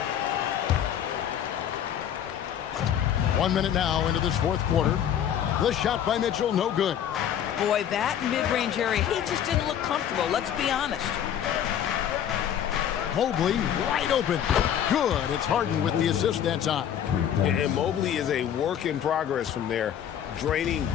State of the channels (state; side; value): quieter; right; 9.6 dB